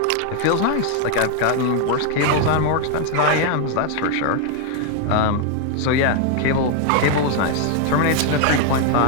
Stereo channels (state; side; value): different; both; correlation 0.00